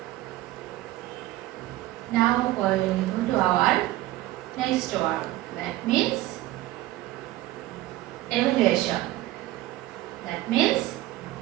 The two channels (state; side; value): quieter; left; 16.4 dB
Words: Now we will come to our next word. That means evaluation. That means